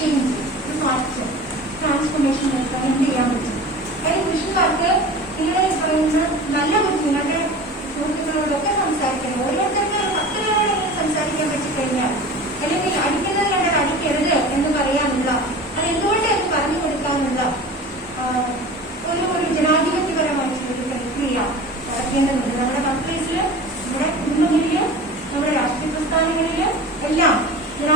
ഒരു മാറ്റം, ട്രാൻസ്ഫോർമേഷൻ നടത്താൻ എന്ത് ചെയ്യാൻ പറ്റും? അതായത് പുരുഷന്മാർക്ക് നിങ്ങൾ പറയുന്ന നല്ല ബുദ്ധി നിങ്ങളുടെ സുഹൃത്തുക്കളോടൊക്കെ സംസാരിക്കണം. ഓരോരുത്തർക്ക് 10 പേരോട് ഇങ്ങനെ സംസാരിക്കാൻ പറ്റിക്കഴിഞ്ഞാൽ, അല്ലെങ്കിൽ അടിക്കുന്നത് കണ്ടാൽ അടിക്കരുത് എന്ന് പറയാനുള്ള, അത് എന്തുകൊണ്ട് എന്ന് പറഞ്ഞു കൊടുക്കാനുള്ള ഒരു ജനാധിപത്യപരമായിട്ടുള്ള ഒരു പ്രക്രിയ നടക്കേണ്ടതുണ്ട്. നമ്മുടെ വർക്ക്പ്ലേസില്, നമ്മുടെ കുടുംബങ്ങളിലും നമ്മുടെ രാഷ്ട്രീയ പ്രസ്ഥാനങ്ങളിലും എല്ലാം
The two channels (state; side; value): normal; both; correlation 0.36